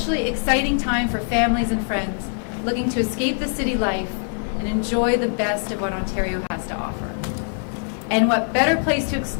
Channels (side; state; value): right; silent; 64 dB below the other